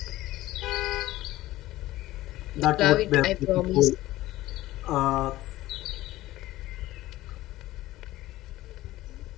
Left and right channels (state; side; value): quieter; right; 16.5 dB